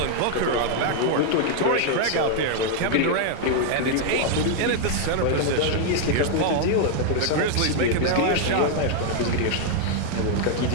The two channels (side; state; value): both; different; correlation 0.00